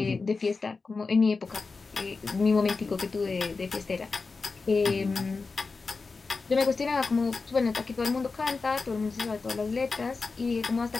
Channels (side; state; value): right; quieter; 4.3 dB